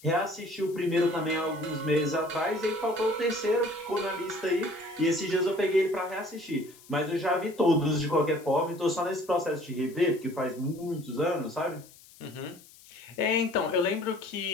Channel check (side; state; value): left; noise; hiss, 23 dB below the sound